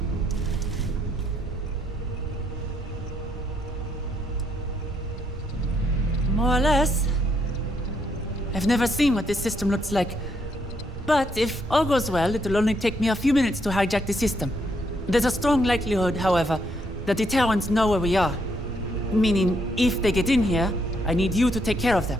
More or less. I've never seen what this system looks like. But if all goes well, it'll only take me a few minutes to hijack the system. There's a strong likelihood, however, that the Terrans know where we are. Meaning, if they get in here, I need you to take care of them.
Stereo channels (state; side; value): normal; both; correlation 0.74